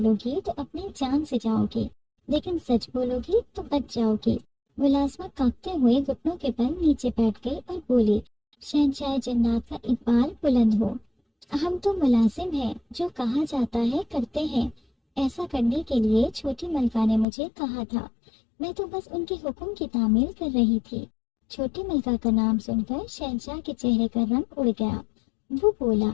گی تو اپنی جان سے جاؤ گی، لیکن سچ بولو گی تو بچ جاؤ گی۔ ملازمہ کانپتے ہوئے گھٹنوں کے بل نیچے بیٹھ گئی اور بولی، شہنشاہ جنات کا اقبال بلند ہو، ہم تو ملازم ہیں، جو کہا جاتا ہے کرتے ہیں۔ ایسا کرنے کے لیے چھوٹی ملکہ نے مجھے کہا تھا، میں تو بس ان کے حکم کی تعمیل کر رہی تھی۔ چھوٹی ملکہ کا نام سن کر شہنشاہ کے چہرے کا رنگ اڑ گیا۔ وہ بولا،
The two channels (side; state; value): right; drops out; at 17.2 s